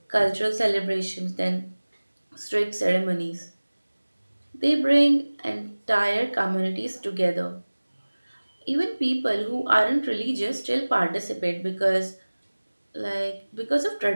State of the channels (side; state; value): both; inverted; correlation -1.00